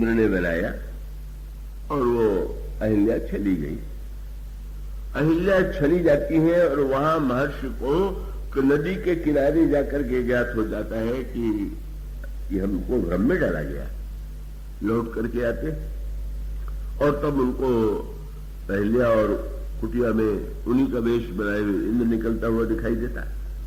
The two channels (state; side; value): identical; both; correlation 1.00